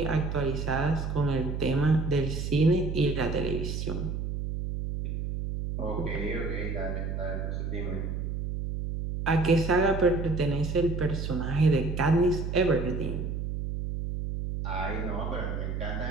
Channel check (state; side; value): noise; right; hum, 3 dB below the sound